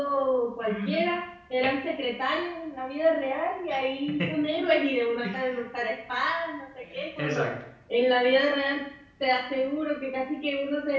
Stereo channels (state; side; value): identical; both; correlation 1.00